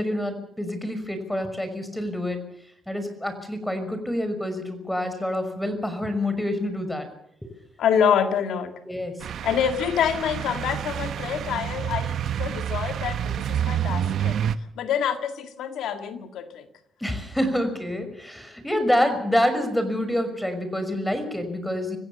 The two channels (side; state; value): both; normal; correlation 0.73